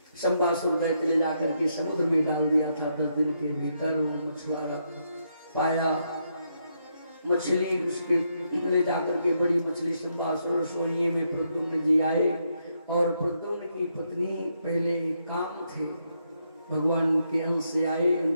संबासुर दैत्य ले जाकर के समुद्र में डाल दिया था। 10 दिन के भीतर मछुआरा पाया मछली, उसके ले जाकर के बड़ी मछली संबासुर सोइए में प्रद्युम्न जी आए। और प्रद्युम्न की पत्नी पहले काम थे, भगवान के अंश से आए।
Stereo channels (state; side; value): inverted; both; correlation -0.78